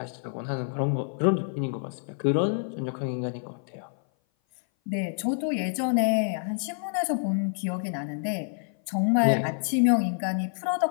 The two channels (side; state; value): right; silent; 57 dB below the other